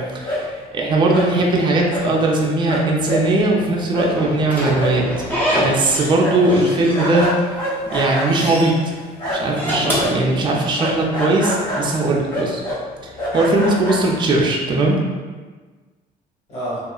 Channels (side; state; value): both; normal; correlation 0.48